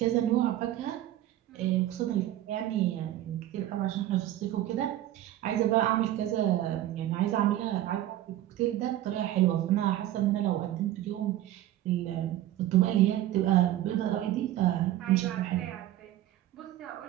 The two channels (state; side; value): quieter; left; 13.6 dB